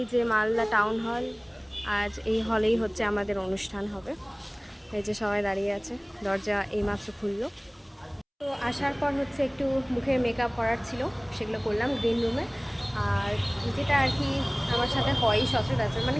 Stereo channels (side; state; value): both; identical; correlation 1.00